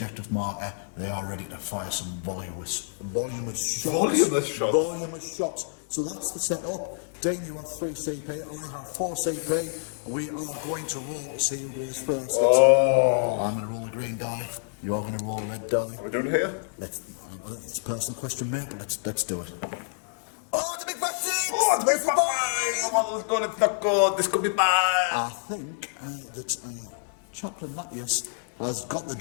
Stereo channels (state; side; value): silent; right; digital silence